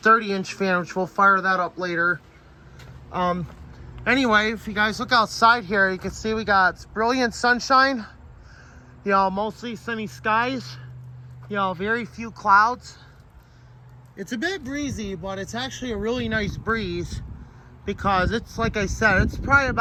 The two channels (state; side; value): identical; both; correlation 1.00